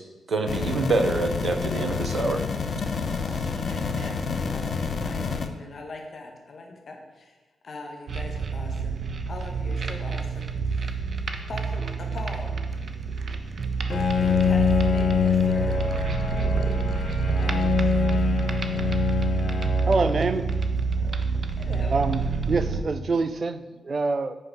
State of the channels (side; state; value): both; normal; correlation 0.70